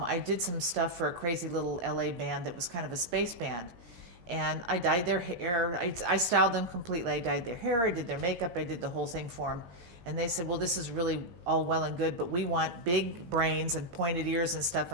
did some stuff for a crazy little LA band that was kind of a space band. And I dyed their hair. I styled them completely. I dyed their hair. I did their makeup. I did the whole thing for them. And they said, well, this is really all well and good, but we want big brains and pointed ears and stuff.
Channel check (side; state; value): left; late; 16 ms